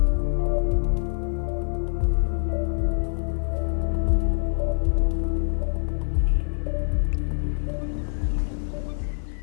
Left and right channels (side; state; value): right; silent; digital silence